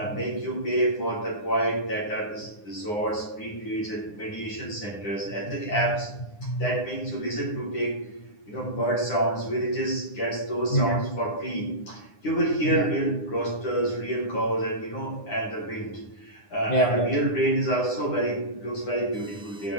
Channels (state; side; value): late; right; 9.8 ms